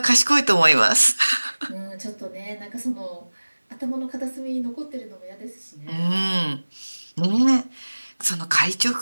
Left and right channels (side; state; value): both; inverted; correlation -1.00